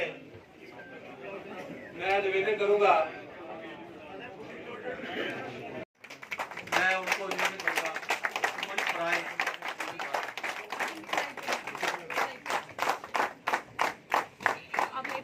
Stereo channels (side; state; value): both; identical; correlation 1.00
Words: मैं निवेदन करूंगा, मैं उनको निवेदन करूंगा मंच पर आए।